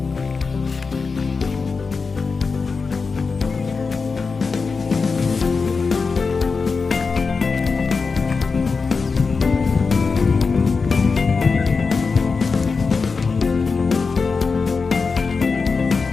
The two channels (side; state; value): right; quieter; 4.7 dB